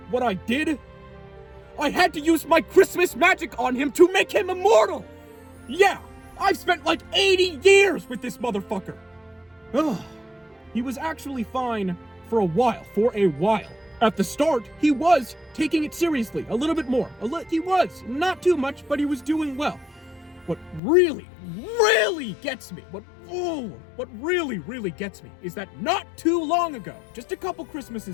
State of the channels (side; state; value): right; drops out; at 20.8 s